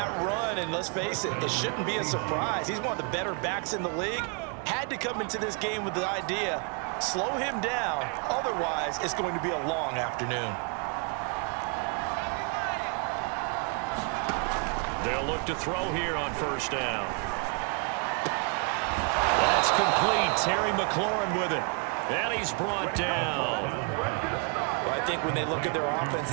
run, and let's face it, it shouldn't be a surprise. He's one of the better backs in the league. Had to come into this game with the idea, slow him down, otherwise it's going to be a long afternoon. They'll look to throw here on first down. That's complete. Terry McLaurin with it. And he's brought down. Well, I think when they look at their offense,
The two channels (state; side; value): quieter; left; 37.2 dB